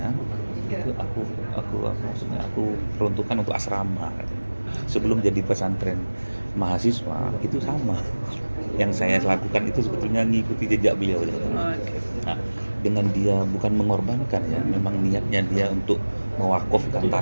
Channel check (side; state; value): both; inverted; correlation -1.00